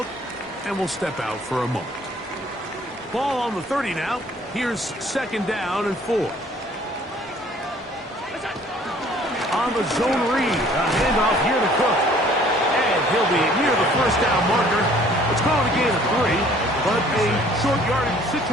and will step out for a moment. Ball on the 30 now. Here's 2nd down and 4. On the zone read, a handoff here to Cook. And he'll be near the 1st down marker. It's called a gain of 3, but a short yardage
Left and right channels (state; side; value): normal; both; correlation 0.56